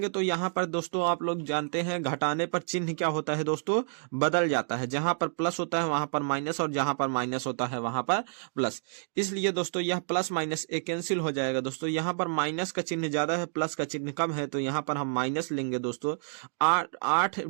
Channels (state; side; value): silent; left; digital silence